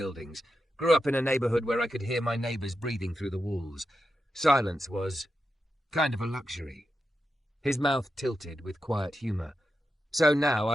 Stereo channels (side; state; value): both; normal; correlation 0.88